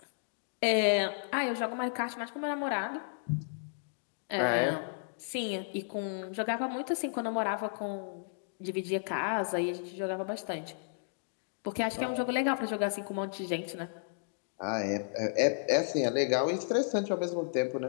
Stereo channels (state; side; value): silent; right; digital silence